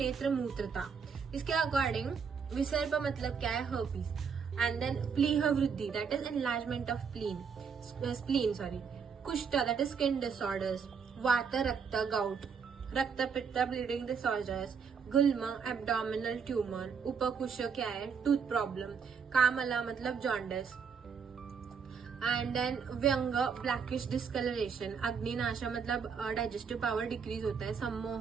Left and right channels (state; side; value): quieter; left; 6.2 dB